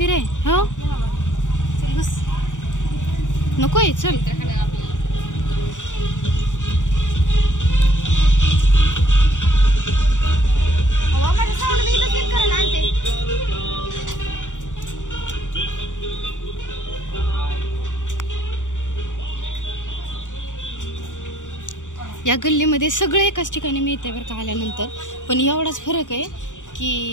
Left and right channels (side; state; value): right; late; 0.86 ms